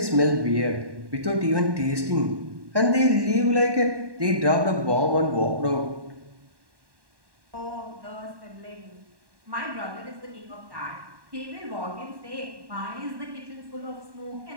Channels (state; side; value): late; left; 1.1 ms